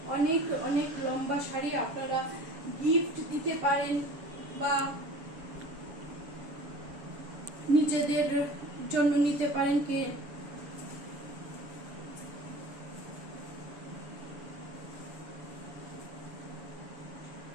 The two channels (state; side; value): late; left; 7.1 ms